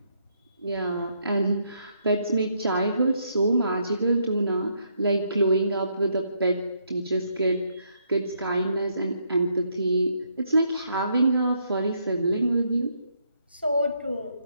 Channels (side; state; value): both; inverted; correlation -0.74